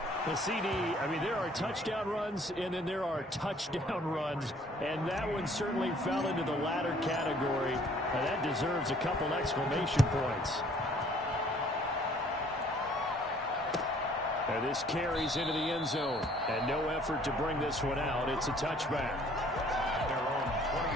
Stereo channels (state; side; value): normal; both; correlation 0.58